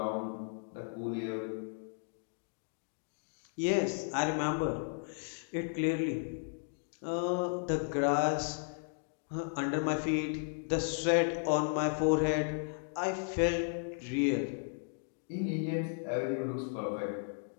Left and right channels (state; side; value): silent; right; digital silence